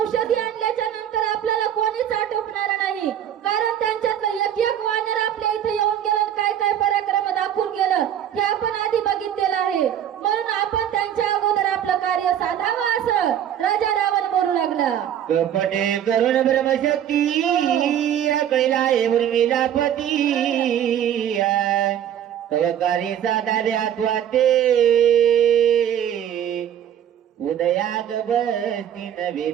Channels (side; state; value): left; quieter; 10.1 dB